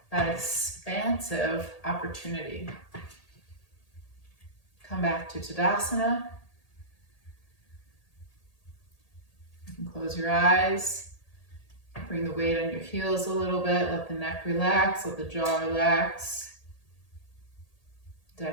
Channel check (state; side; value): late; right; 1.8 ms